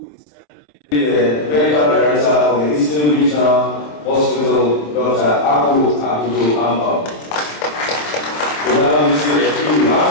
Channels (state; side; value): late; right; 27 ms